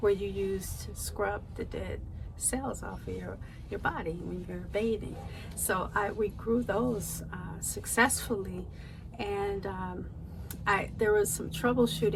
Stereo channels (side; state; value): both; identical; correlation 1.00